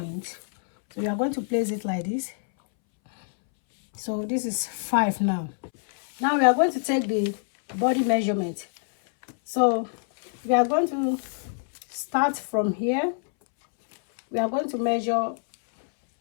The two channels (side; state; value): right; silent; 61 dB below the other